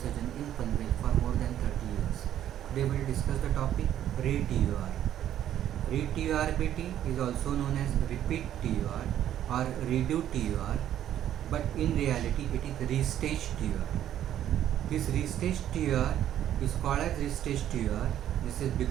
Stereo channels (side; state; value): left; quieter; 11.2 dB